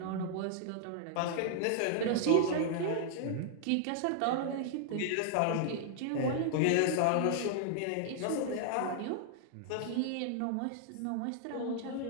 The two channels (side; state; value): both; different; correlation -0.01